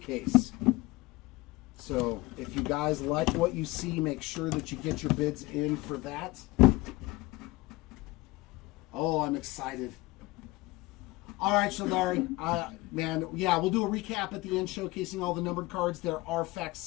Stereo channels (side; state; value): right; quieter; 20.8 dB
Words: So if you guys like what you see, make sure that you get your bids in for that. Oh, I'm excited. All right, Shaldari. Man, yeah, we'll do a recap at the end showcasing all the numbered cards. There are